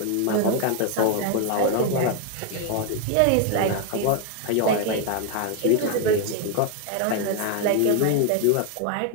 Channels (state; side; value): different; both; correlation 0.01